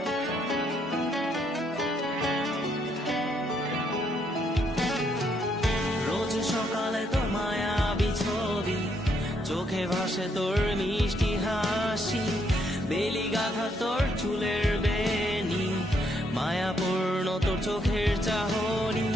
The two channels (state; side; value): normal; both; correlation 0.73